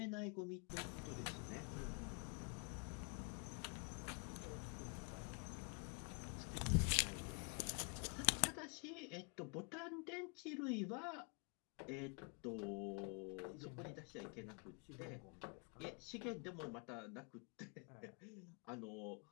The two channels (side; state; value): right; quieter; 37.3 dB